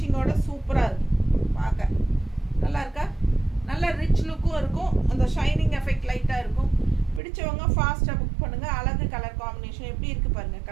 சூப்பராக இருக்கும். பார்க்க நல்லா இருக்கா? நல்ல ரிச் லுக்கும் இருக்கும். அந்த ஷைனிங் எஃபெக்ட் லைட்டாக இருக்கும். பிடிச்சவங்க ஃபாஸ்ட்டாக புக் பண்ணுங்கள். அழகு கலர் காம்பினேஷன் எப்படி இருக்குது பாருங்கள்.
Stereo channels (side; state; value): left; drops out; at 7.2 s